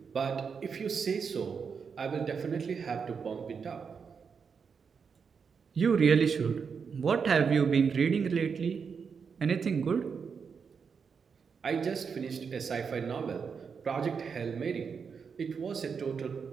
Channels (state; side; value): quieter; left; 6.0 dB